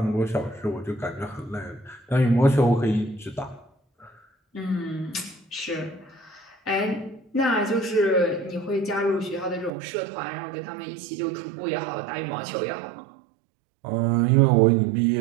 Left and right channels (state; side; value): drops out; left; at 9.7 s